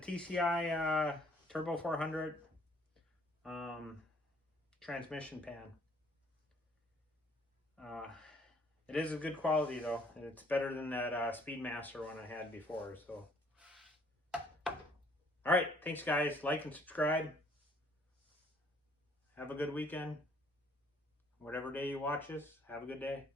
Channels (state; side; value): normal; both; correlation 0.61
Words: Turbo 400 transmission pan. It is a good quality though. It's better than that Speedmaster one I had before. So, all right. Thanks, guys. Like and subscribe. Have a good weekend. Whatever day you watch this, have a good day.